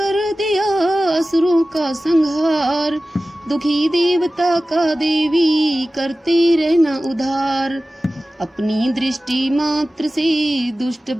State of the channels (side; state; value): both; normal; correlation 0.96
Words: दिया असुरों का संहार, दुखी देवता का देवी करते रहना उधार। अपनी दृष्टि मात्र से दुष्ट